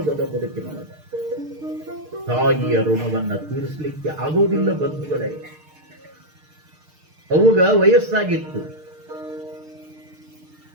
ಬದುಕಿನೊಳಗ? ತಾಯಿಯ ಋಣವನ್ನ ತೀರಿಸಲಿಕ್ಕೆ ಆಗೋದಿಲ್ಲ ಬಂಧುಗಳೇ. ಅವುಗ ವಯಸ್ಸಾಗಿತ್ತು.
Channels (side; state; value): left; late; 6.6 ms